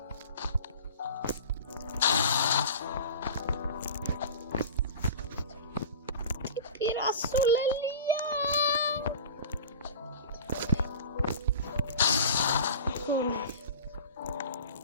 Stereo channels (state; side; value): inverted; both; correlation -0.37